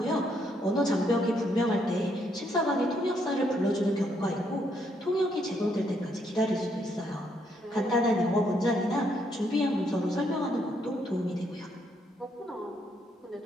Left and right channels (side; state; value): both; normal; correlation 0.73